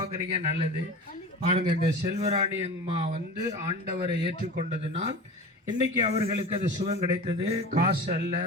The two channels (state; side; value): normal; both; correlation 0.33